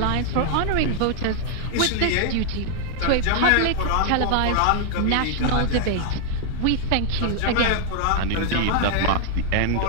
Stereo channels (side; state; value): both; different; correlation 0.00